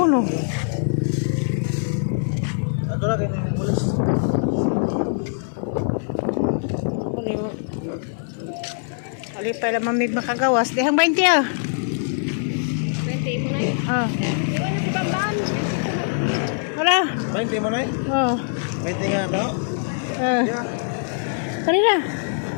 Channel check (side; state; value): right; silent; digital silence